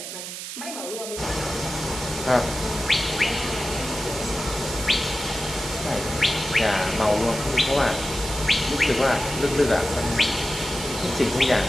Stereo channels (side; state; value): right; noise; hiss, 8 dB below the sound